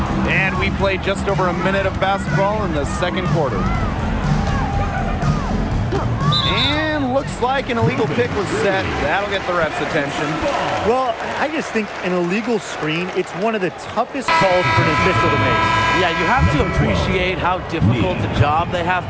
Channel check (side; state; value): both; identical; correlation 1.00